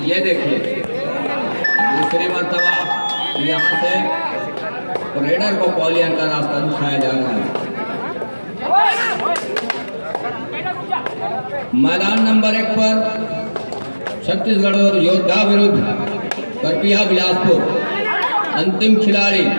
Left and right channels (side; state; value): both; inverted; correlation -1.00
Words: ये देखिए दूसरी मर्तबा यहाँ से रेडर को पॉलियन का रास्ता दिखाया जा रहा है। मैदान नंबर 1 पर छत्तीसगढ़ और योद्धा विरुद्ध करपिया बिलासपुर, अंतिम खिलाड़ी